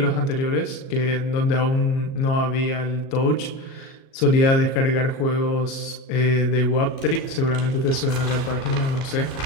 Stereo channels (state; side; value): late; right; 37 ms